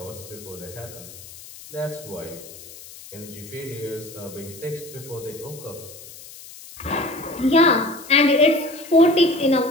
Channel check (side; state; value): left; noise; hiss, 17 dB below the sound